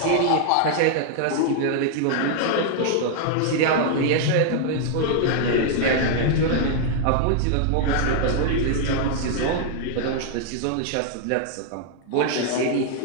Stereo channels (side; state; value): both; different; correlation 0.00